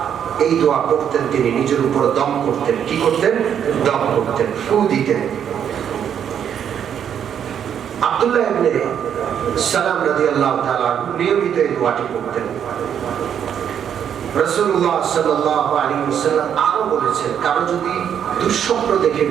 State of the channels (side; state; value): left; quieter; 8.7 dB